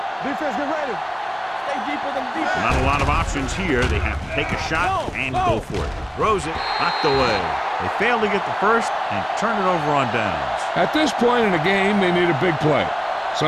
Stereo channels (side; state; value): both; identical; correlation 1.00